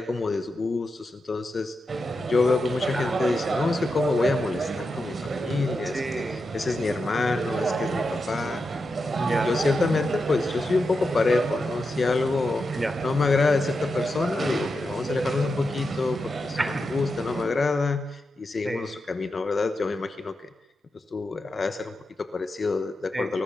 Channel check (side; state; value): both; normal; correlation 0.88